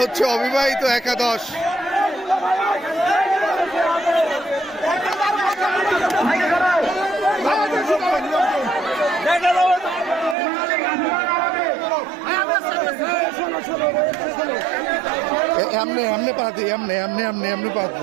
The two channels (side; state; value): left; drops out; at 10.4 s